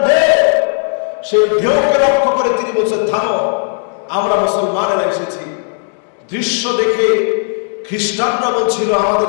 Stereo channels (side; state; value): right; silent; digital silence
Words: ঢেউ। সেই ঢেউকে লক্ষ্য করে তিনি বলছেন, থামো, আমরা মুসলমানেরা এসেছি। দৃশ্য দেখে খ্রিস্টানরা বলছিল, আমাদের